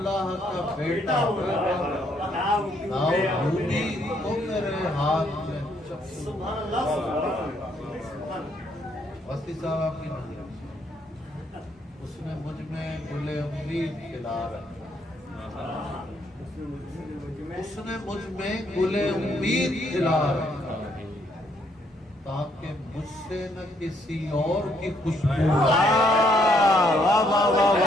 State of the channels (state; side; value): normal; both; correlation 0.71